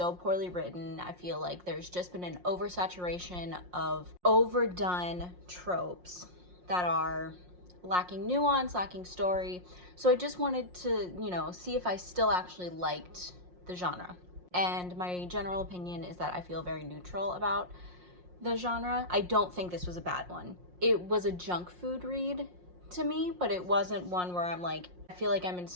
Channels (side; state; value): left; late; 5.6 ms